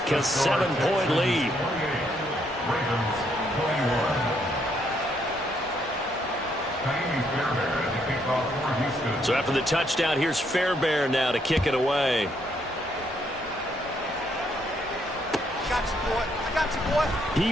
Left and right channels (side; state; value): both; normal; correlation 0.73